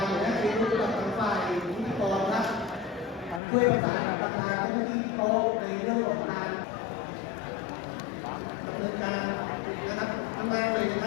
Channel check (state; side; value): drops out; right; at 3.4 s